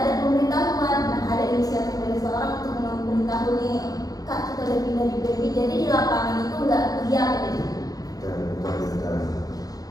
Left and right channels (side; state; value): right; late; 0.18 ms